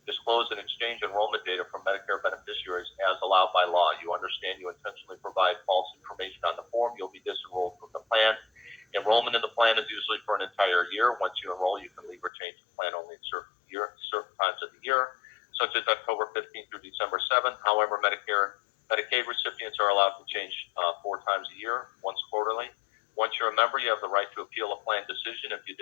disclose, and exchange enrollment data from Medicare beneficiaries as allowed by law. You understand you intentionally provide false information on the form, you'll be disenrolled from the plan. Enrollment in the plan is usually for an entire year. Once you enroll, you can leave or change the plan only in certain times of the year. such as October 15th through December 7th. However, Medicaid recipients are allowed to change 4 times a year, once quarterly. Once you're a member, you have the right to appeal a plan decision if you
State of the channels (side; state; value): right; drops out; at 12.3 s